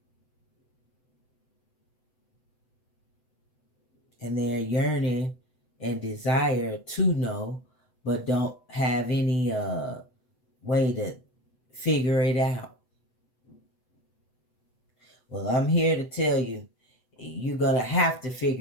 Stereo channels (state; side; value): late; right; 7.9 ms